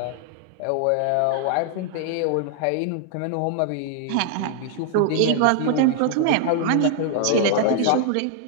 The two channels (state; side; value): different; both; correlation -0.01